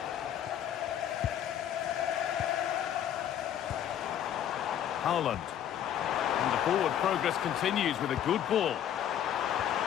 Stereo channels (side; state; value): right; quieter; 10.2 dB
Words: Haaland. And the forward progress continues with a good ball.